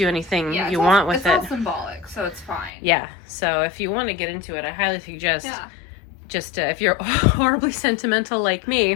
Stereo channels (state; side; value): drops out; right; at 2.7 s